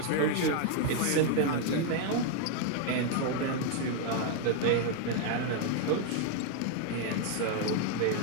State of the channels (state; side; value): different; both; correlation 0.01